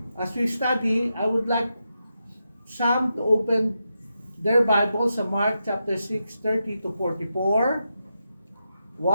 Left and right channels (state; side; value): inverted; both; correlation -0.86